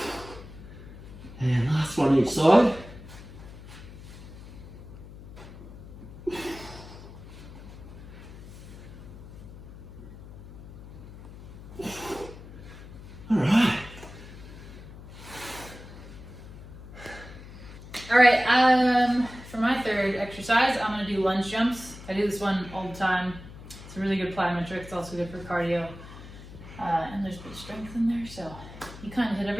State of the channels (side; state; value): left; noise; hum, 15 dB below the sound